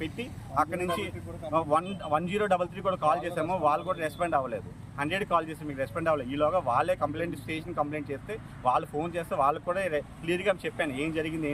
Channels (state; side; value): identical; both; correlation 1.00